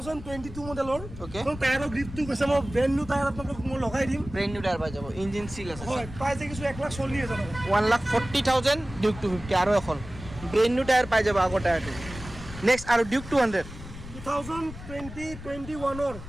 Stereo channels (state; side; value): noise; left; rumble, 13 dB below the sound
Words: 2022 মডেলৰ Okay. তো টায়াৰৰ গ্ৰিপটো কৈছে মই ব্ৰেণ্ড নিউ টায়াৰ আপোনাক মই লগাই দিম ব্ৰেণ্ড নিউ টায়াৰ পাই যাব ইঞ্জিন চিল আছে হয় প্ৰাইস দেখিছো 1,40,000 টকা 1,40,000 ডিউক 250 আৰু এখন ব্ৰেণ্ড নিউ টায়াৰ পাই যাব আগৰ টায়াৰটো নেক্সট আৰু Duke 200 2020-21